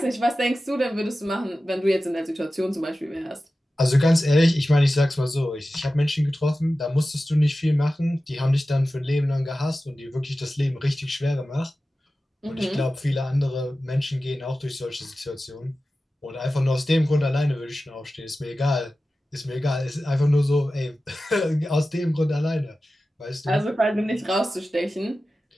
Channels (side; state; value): both; normal; correlation 0.95